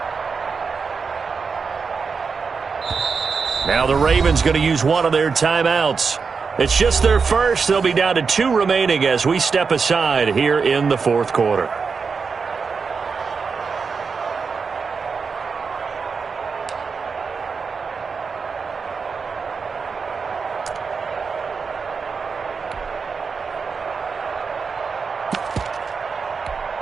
Now the Ravens going to use one of their timeouts. It's just their first. They'll be down to 2 remaining as we step aside here in the 4th quarter.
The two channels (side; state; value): left; quieter; 5.3 dB